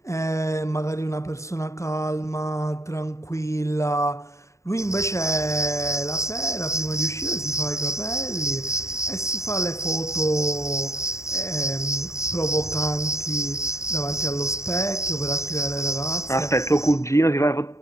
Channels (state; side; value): late; right; 0.14 ms